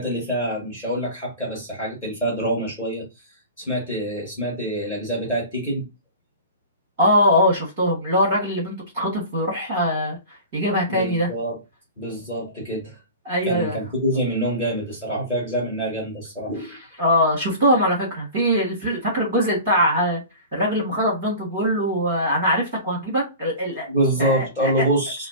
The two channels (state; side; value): inverted; both; correlation -0.36